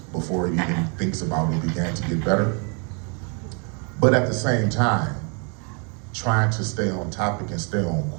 before it even thinks about it began to get better. But at the same time, trying to stay on topic and stay on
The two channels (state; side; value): quieter; left; 36.4 dB